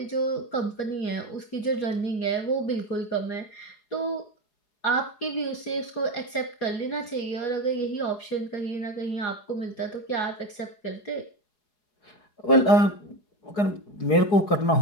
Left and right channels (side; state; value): right; late; 4.8 ms